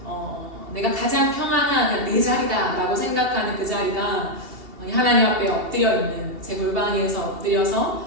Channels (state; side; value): late; left; 2.7 ms